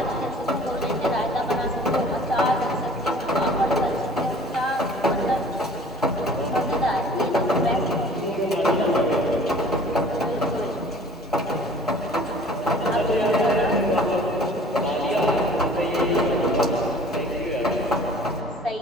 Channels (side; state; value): both; normal; correlation 0.47